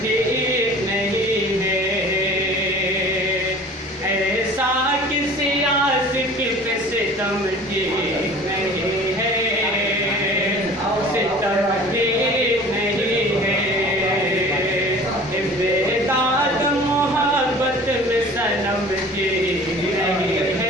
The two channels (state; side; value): normal; both; correlation 0.44